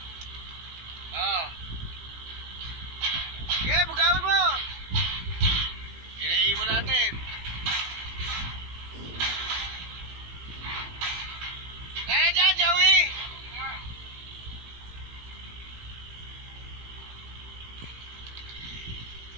Oh. Okay, bugawin mo. Inaibon natin. Kaya dyan, Joey.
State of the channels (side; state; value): left; late; 17 ms